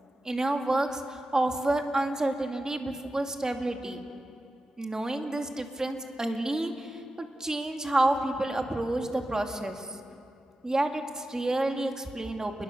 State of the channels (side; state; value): both; normal; correlation 0.92